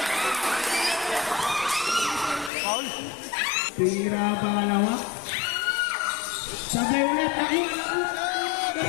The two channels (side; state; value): right; drops out; at 2.5 s